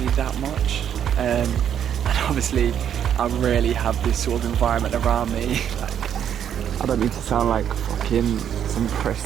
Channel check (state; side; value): quieter; left; 9.2 dB